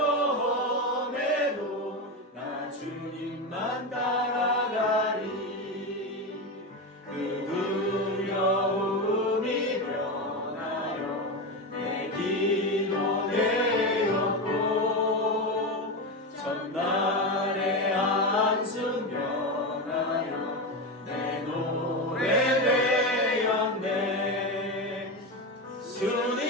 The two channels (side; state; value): both; normal; correlation 0.16